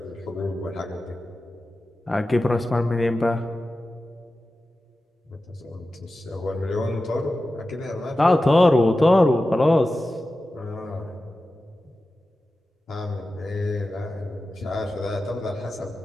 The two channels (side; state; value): both; normal; correlation 0.94